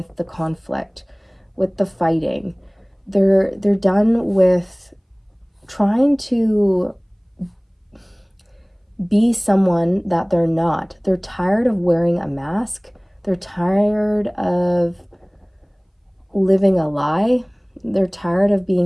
the conflict, with the fighting. They're done with trying to be someone that they're not. They're tired of wearing a mask. They're tired of living a lie. They're tired of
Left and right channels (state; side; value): identical; both; correlation 1.00